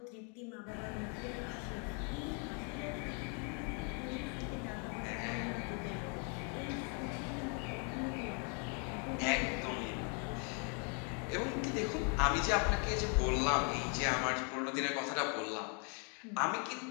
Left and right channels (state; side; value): quieter; right; 38.1 dB